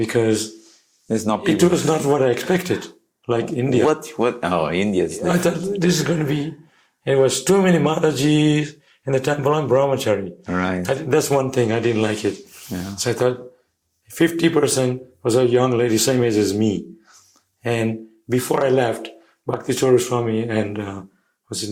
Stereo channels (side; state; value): both; identical; correlation 1.00